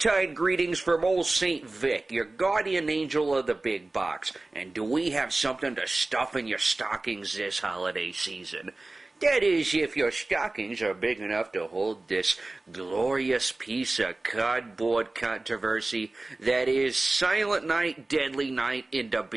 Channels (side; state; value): left; quieter; 3.0 dB